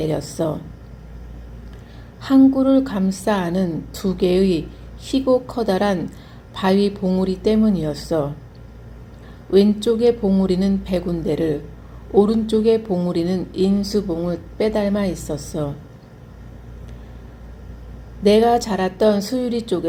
항구를 감싸 안은 두 개의 희고 커다란 바위 봉우리 때문이었어. 왼쪽의 봉우리는 백운대를, 오른쪽의 봉우리는 인수봉을 빼닮아 있었어. 내가 자랐던 수유리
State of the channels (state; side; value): identical; both; correlation 1.00